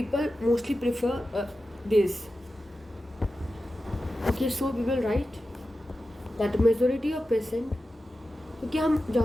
mostly prefer this. Okay, so we will write that majority of patient, क्योंकि हम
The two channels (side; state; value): both; normal; correlation 0.92